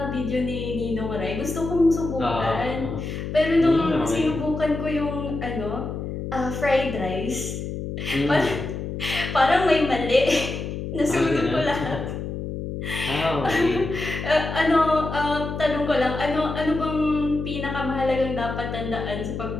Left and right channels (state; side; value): noise; left; hum, 6 dB below the sound